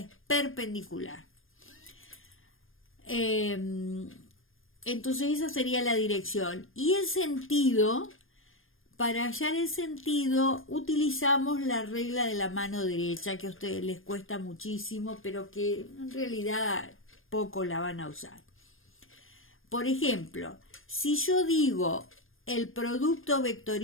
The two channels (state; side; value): late; right; 0.59 ms